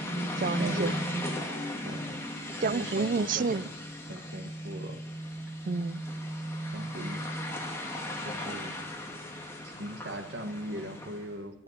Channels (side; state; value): both; normal; correlation 0.46